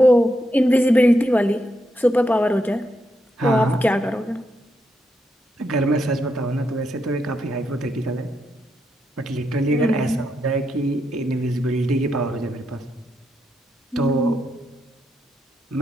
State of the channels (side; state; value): both; normal; correlation 0.82